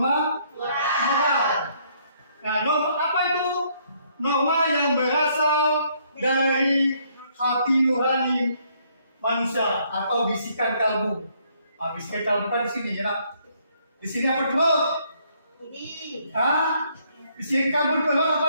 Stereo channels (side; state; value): both; inverted; correlation -0.68